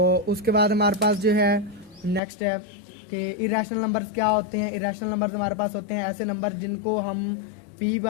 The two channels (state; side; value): drops out; right; at 2.2 s